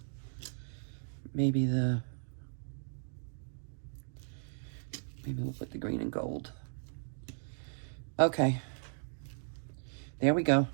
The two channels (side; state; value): left; silent; digital silence